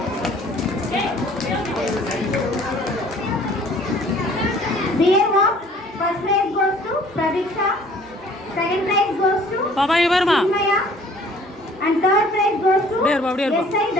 Beer walk. First prize goes to Pratiksha. Second prize goes to பாப்பா இங்க பாருமா. Chinmaya. And third prize goes to S.I.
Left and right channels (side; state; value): both; normal; correlation 0.54